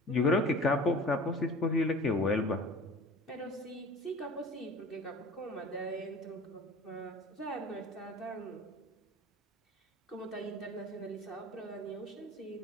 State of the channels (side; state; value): both; normal; correlation 0.42